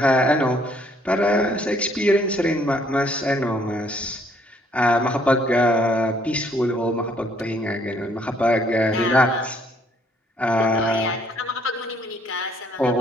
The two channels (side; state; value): both; normal; correlation 0.65